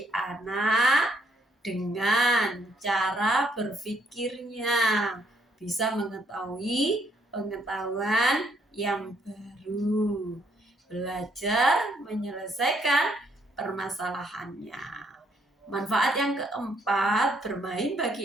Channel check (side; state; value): both; normal; correlation 0.71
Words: anak dengan cara berpikirnya, bisa mengetahui pengetahuan yang baru, belajar menyelesaikan permasalahannya. Manfaat yang keempat bermain